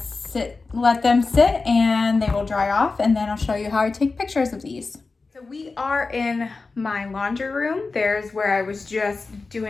let them sit and they will dry off, and then I'll show you how I take pictures of these. So we are in my laundry room. There's where I was just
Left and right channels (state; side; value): quieter; right; 4.0 dB